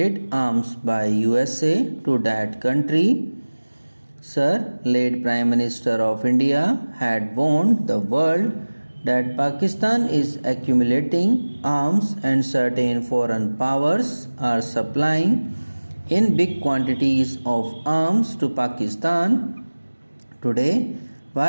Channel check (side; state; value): both; inverted; correlation -1.00